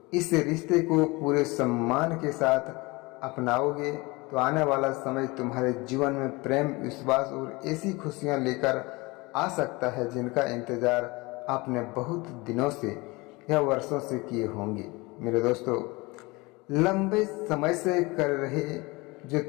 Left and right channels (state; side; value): quieter; right; 24.3 dB